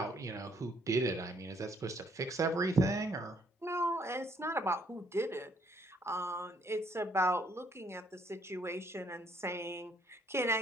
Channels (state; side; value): normal; both; correlation 0.67